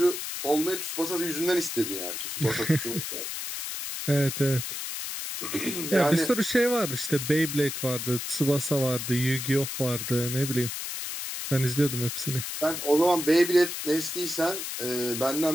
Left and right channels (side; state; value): left; noise; hiss, 5 dB below the sound